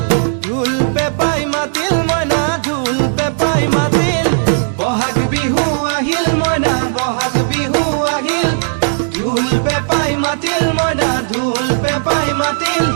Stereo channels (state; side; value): silent; left; digital silence